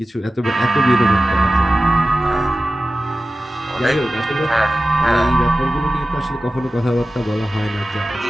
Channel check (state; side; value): normal; both; correlation 0.95